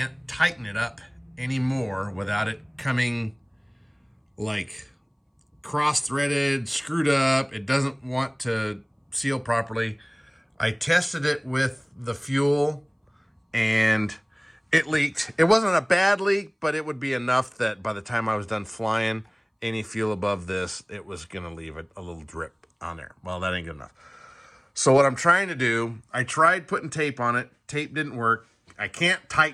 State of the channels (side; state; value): both; identical; correlation 1.00